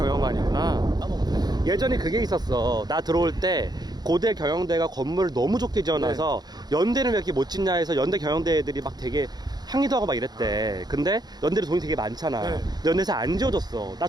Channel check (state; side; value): late; left; 0.20 ms